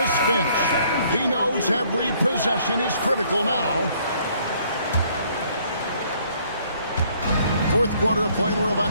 Finch. He knows every possession is critical now. Fourth quarter of play, and we're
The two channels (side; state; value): both; inverted; correlation -0.63